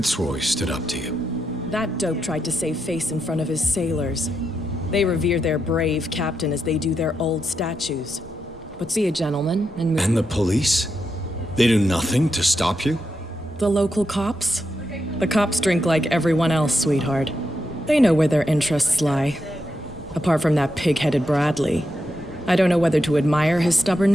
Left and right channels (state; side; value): normal; both; correlation 0.84